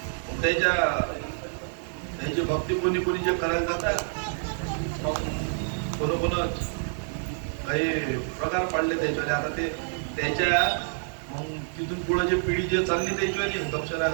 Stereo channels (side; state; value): left; silent; digital silence